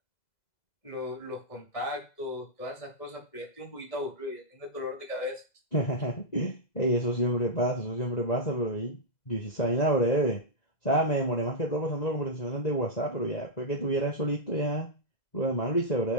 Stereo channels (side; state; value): right; late; 2.0 ms